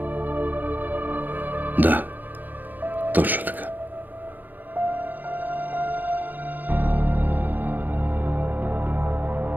Да, точно така.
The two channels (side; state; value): left; late; 0.087 ms